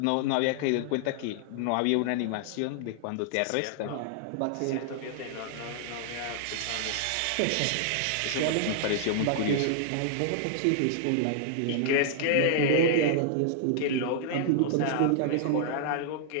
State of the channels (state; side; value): different; both; correlation -0.01